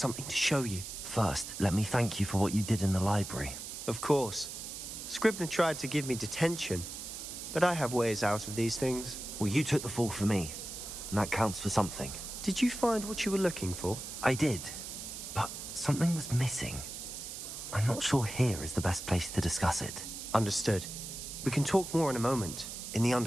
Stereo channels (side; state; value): right; noise; hiss, 8 dB below the sound